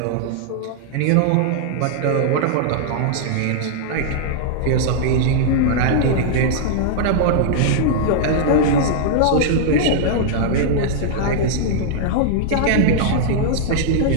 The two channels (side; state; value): both; different; correlation -0.01